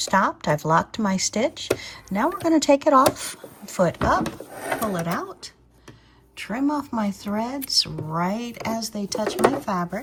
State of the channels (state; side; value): identical; both; correlation 1.00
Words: I've locked my stitch. Now we're going to take it off, foot up, pull it out, trim off my threads right as they touch my